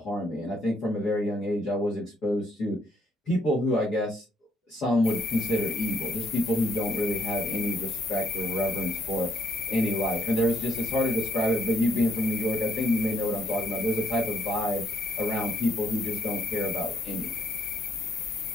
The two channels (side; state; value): both; normal; correlation 0.71